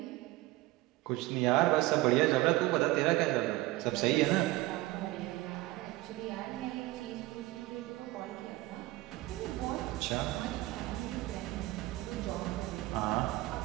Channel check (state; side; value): quieter; left; 18.9 dB